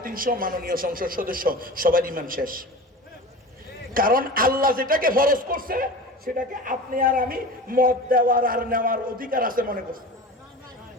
মাননীয় সংসদ সদস্য সবার ইমান শেষ। কারণ আল্লাহ যেটাকে ফরজ করছে সেটাকে আপনি আর আমি মত দেওয়ার আর নেওয়ার অধিকার আছে মনে করছি।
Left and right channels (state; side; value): normal; both; correlation 0.33